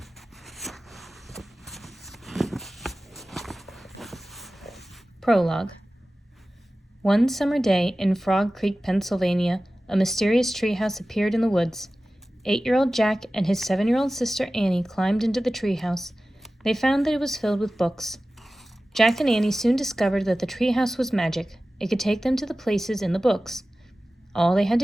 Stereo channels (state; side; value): normal; both; correlation 0.96